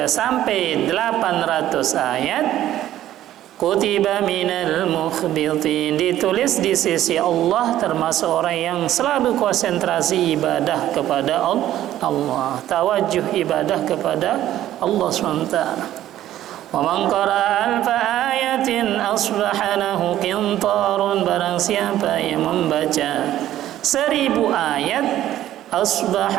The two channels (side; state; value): left; quieter; 12.9 dB